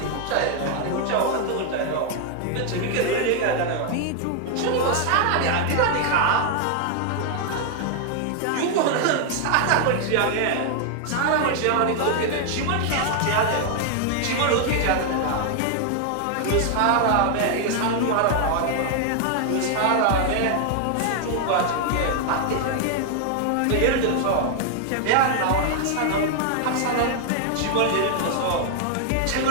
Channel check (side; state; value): both; different; correlation 0.00